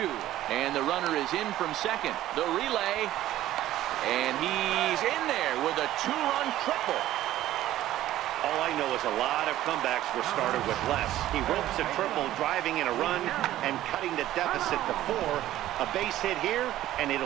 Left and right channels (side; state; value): left; quieter; 13.9 dB